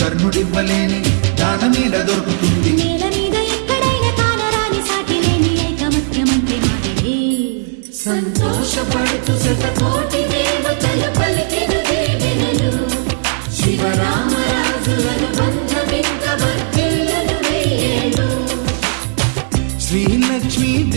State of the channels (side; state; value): left; silent; 57 dB below the other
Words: దాన మీద దొరుకుతుంది నేల మీద ఎక్కడైనా కానరాని సాటి లేని ఐకమత్యమంటే సంతోషపడుతూ శతకోటి దేవతలు పలికిన దీవెనలు శివరామరాజులను బంధమింక వర్ధిల్లును వెయ్యేళ్ళు. శ్రీలక్ష్మీ